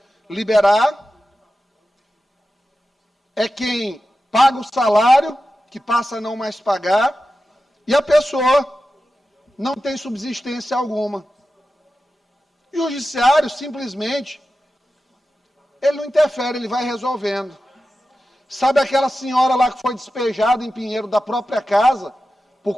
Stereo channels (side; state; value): both; normal; correlation 0.92